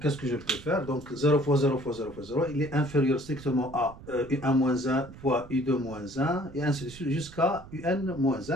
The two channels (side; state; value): right; noise; rumble, 18 dB below the sound